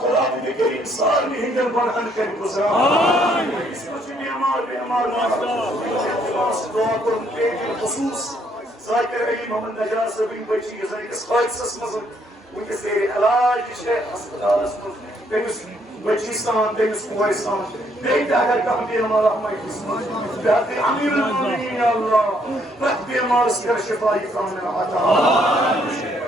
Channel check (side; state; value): both; normal; correlation 0.69